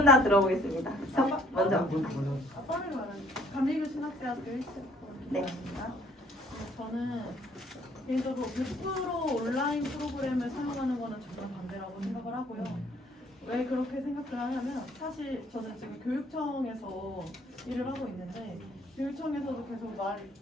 다 들어보겠습니다. 먼저. 감리교 신학대학교 1학번입니다. 네. 저는 개인적으로 100% 온라인 프로그램을 사용하는 거는 정말 반대라고 생각을 하고요. 왜 그렇게 생각을 하냐면 사실 저는 지금 교육청에서 일을 하고 있는데 교육청에서도 계속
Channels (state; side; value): normal; both; correlation 0.60